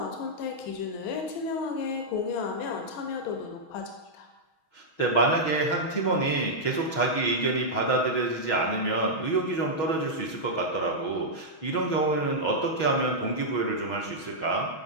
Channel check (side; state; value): right; late; 6.3 ms